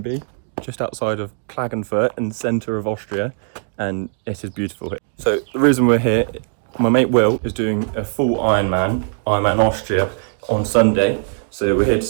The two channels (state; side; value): silent; left; 58 dB below the other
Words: just outside of Klagenfurt in the centre of Austria, and it is beautiful here. So the reason we're here, my mate Will is doing a full Ironman Austria on Sunday, so we're here to